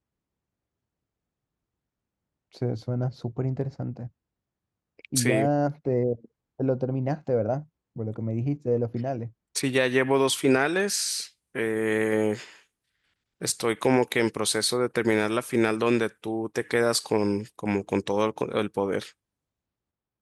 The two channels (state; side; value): identical; both; correlation 1.00